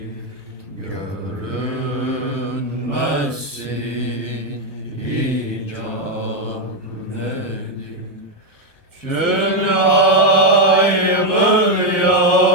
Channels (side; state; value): left; late; 1.2 ms